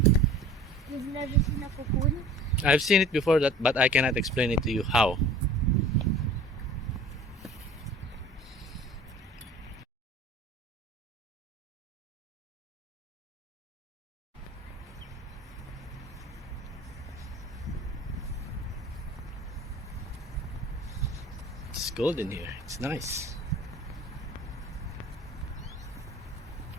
You've never seen a cocoon? I've seen it before, but I cannot explain it to you how. It's golden here. It's nice.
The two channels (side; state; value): both; normal; correlation 0.43